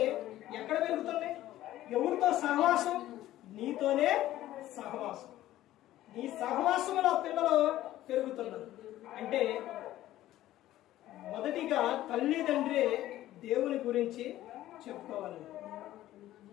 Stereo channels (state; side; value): quieter; right; 14.3 dB